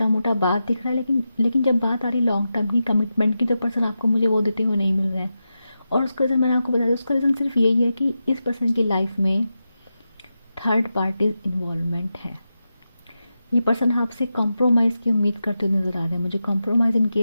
मोटा बात दिख रहा है, लेकिन जब बात आ रही लॉन्ग टर्म की, कमिटमेंट की, तो पर्सन आपको मुझे वो देते हुए नहीं मिल रहे हैं। और उसका रीज़न मैंने आपको बता दिया, उसका रीज़न सिर्फ यही है कि इस पर्सन की लाइफ में थर्ड पार्टी इन्वॉल्वमेंट है। ये पर्सन आपसे कॉम्प्रोमाइज़ की उम्मीद करते हुए नजर आ रहे हैं मुझे, कॉम्प्रोमाइज़ इन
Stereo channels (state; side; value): inverted; both; correlation -0.90